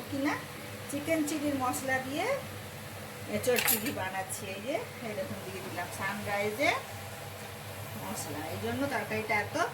কি না। চিকেন চিলির মশলা দিয়ে এঁচোড় চিলি বানাচ্ছি। এই দেখুন দিয়ে দিলাম সানরাইজের মশলা, এই জন্য তরকারিটা এত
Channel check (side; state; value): both; identical; correlation 1.00